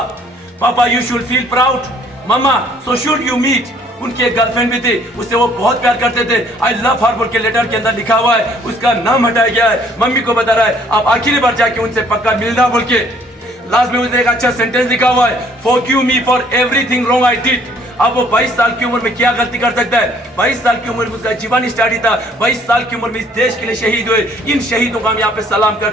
Papa, you should feel proud. Mama, so should you meet. उनकी एक गर्लफ्रेंड भी थी, उससे वो बहुत प्यार करते थे। आई लव हर बोल के लेटर के अंदर लिखा हुआ है, उसका नाम हटाया गया है। मम्मी को बता रहा है आप आखिरी बार जाके उनसे पक्का मिलना बोल के। लास्ट में उसने एक अच्छा सेंटेंस लिखा हुआ है, forgive me for everything wrong I did. अब वो 22 साल की उम्र में क्या गलती कर सकता है? 22 साल की उम्र में उसका जीवन स्टार्ट ही था। 22 साल की उम्र में इस देश के लिए शहीद हुए। इन शहीदों को हम यहाँ पे सलाम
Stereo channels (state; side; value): normal; both; correlation 0.60